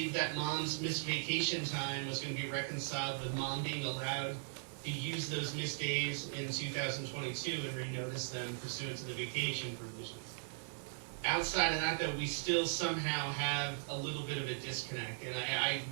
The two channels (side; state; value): left; silent; digital silence